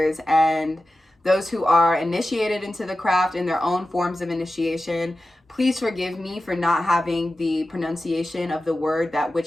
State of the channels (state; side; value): normal; both; correlation 0.94